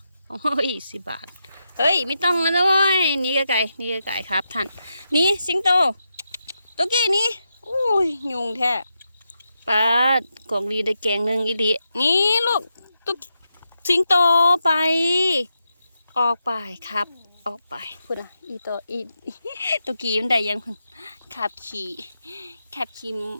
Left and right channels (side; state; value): both; inverted; correlation -0.86